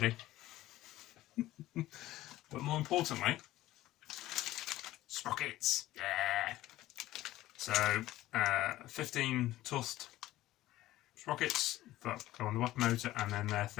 But more importantly, sprockets, yeah. So 15 toothed sprockets that go on the weapon motor, and then they're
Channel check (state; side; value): quieter; right; 15.7 dB